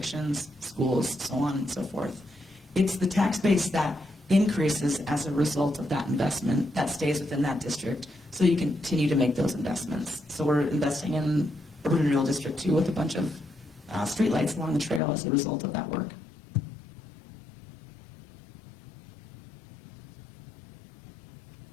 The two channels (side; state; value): right; drops out; at 15.0 s